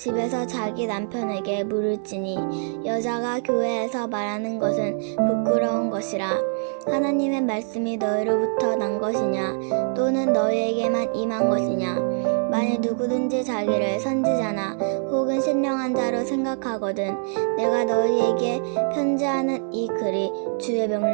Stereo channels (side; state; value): left; silent; digital silence